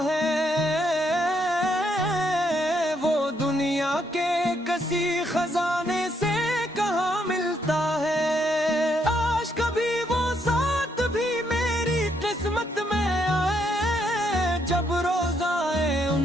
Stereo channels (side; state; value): both; normal; correlation 0.75